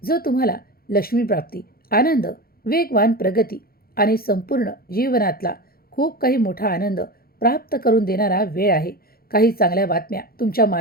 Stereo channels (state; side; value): late; right; 0.44 ms